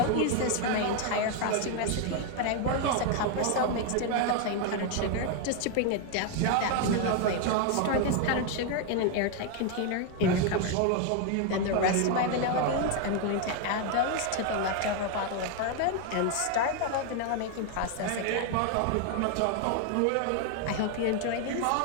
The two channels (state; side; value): different; both; correlation 0.01